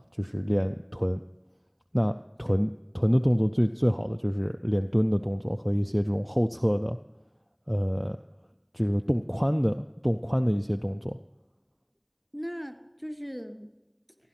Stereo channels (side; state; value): both; identical; correlation 1.00